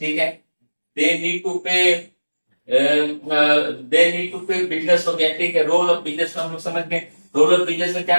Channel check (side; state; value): both; inverted; correlation -1.00